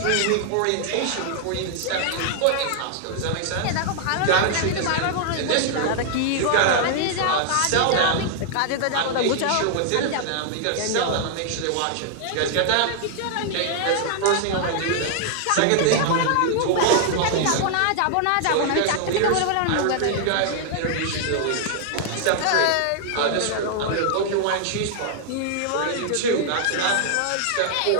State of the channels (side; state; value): both; different; correlation -0.01